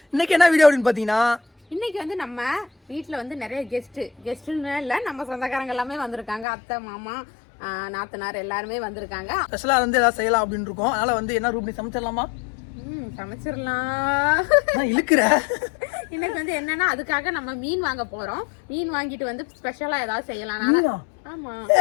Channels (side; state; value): right; drops out; at 6.5 s